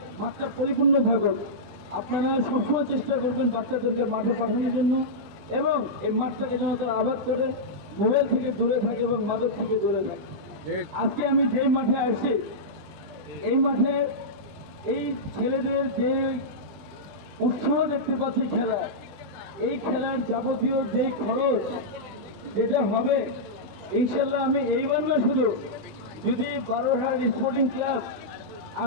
মাঠটা পরিপূর্ণ থাকুক। আপনারা সবসময় চেষ্টা করবেন বাচ্চাদেরকে মাঠে পাঠানোর জন্য, এবং এই মাঠটাকে যেন তারা আবাদ করে, মোবাইল থেকে দূরে থাকে এবং মাদক থেকে দূরে থাকে। আজকে আমি যে মাঠে আসছি, এই মাঠে এই ছেলেদের যে উৎসাহ দেখতে পাচ্ছি খেলা, এই খেলার যাবতীয় যে খরচ যেটা হবে, ইনশাল্লাহ আমি এইবার না শুধু, যদি বারোহাট স্পোর্টিং ক্লাব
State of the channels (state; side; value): late; left; 20 ms